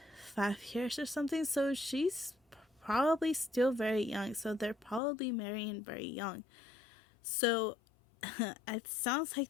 5 years or something. So she's probably still very young. So they're probably marrying very young. So it sounds like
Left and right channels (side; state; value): right; drops out; at 5.0 s